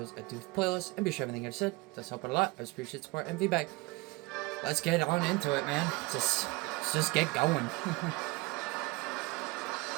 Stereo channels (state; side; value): quieter; left; 23.2 dB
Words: at Doof Playlist, and be sure everything I just said does help out a lot. I just appreciate support and feedback. Let's get on into it, man. Let's just get going.